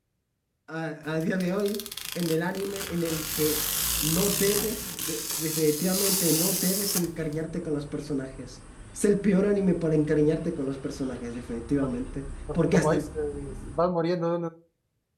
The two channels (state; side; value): identical; both; correlation 1.00